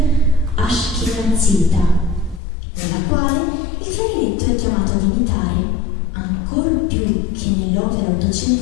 ashkenazita, nella quale il clarinetto è chiamato ad imitare, ancor più che nell'opera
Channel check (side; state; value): right; drops out; at 2.4 s